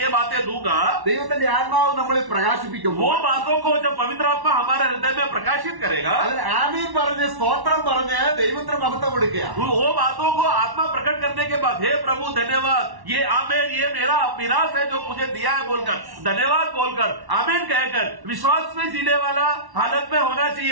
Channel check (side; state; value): left; late; 1.1 ms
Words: बातें दूंगा, ദൈവത്തിന്റെ ആത്മാവ് നമ്മളിൽ वो പ്രകാശിപ്പിക്കുമ്പോൾ बातों को जब पवित्र आत्मा हमारे हृदय में प्रकाशित करेगा, അതിന് ആമീൻ പറഞ്ഞ് സ്തോത്രം പറഞ്ഞ് ദൈവത്തിന് മഹത്വം കൊടുക്കുക. वो बातों को आत्मा प्रकट करने के बाद हे प्रभु धन्यवाद, ये आमेन, ये मेरा मिरास है जो मुझे दिया है बोलकर धन्यवाद बोलकर आमेन कहकर विश्वास में जीने वाला हालत में होना